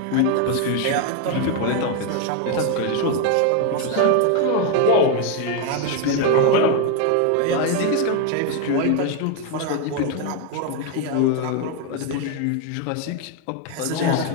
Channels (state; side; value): different; both; correlation 0.01